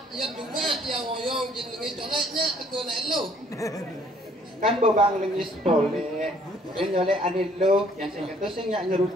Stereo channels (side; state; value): both; normal; correlation 0.60